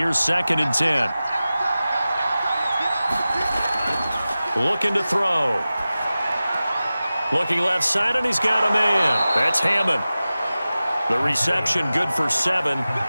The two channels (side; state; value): both; inverted; correlation -0.96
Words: 2nd and 10. Looking to throw. Looking left side, and he's got a man. That's Hammond. The reception good for 7.